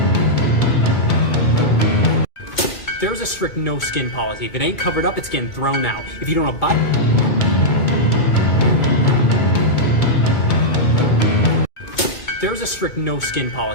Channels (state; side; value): late; right; 2.2 ms